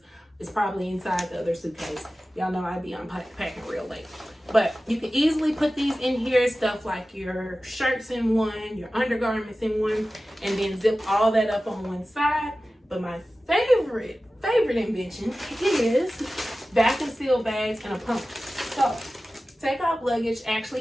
It's probably inside the other suitcase. Y'all know I be unpacking real late. But you can easily put these in here, stuff like your shirts in one, your undergarments in one, and then zip all that up on one side. But my favorite invention is vacuum seal bags and a pump. So Take Off Luggage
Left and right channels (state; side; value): normal; both; correlation 0.95